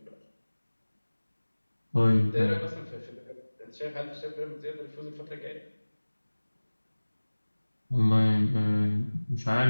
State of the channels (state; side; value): inverted; both; correlation -1.00